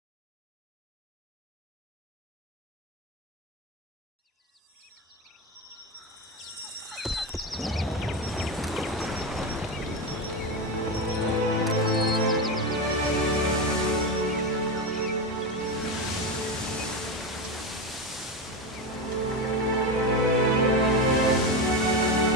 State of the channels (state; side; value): normal; both; correlation 0.16